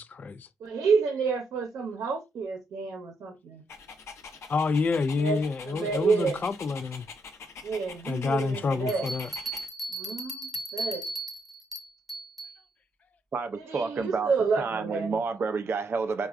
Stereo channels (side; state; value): both; normal; correlation 0.77